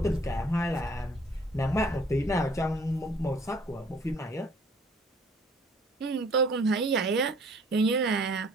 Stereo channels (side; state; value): both; normal; correlation 0.56